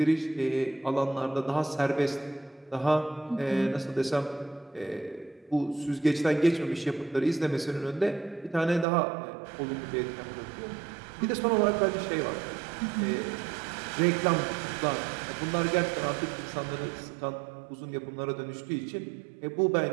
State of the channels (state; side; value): drops out; left; at 8.8 s